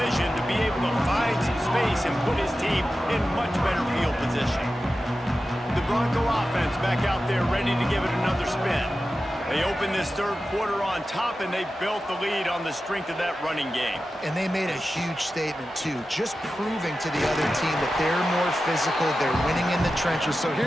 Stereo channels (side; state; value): both; normal; correlation 0.93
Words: to be able to find some space and put his team in much better field position. The Bronco offense back out there ready to give it another spin. They opened this third quarter on top, and they built the lead on the strength of that running game. And they made a huge statement, too, just proving to the other team that they're more physical, they're winning in the trenches. So here